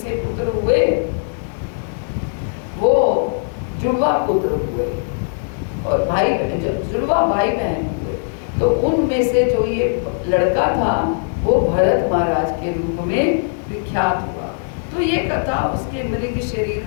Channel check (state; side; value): silent; right; digital silence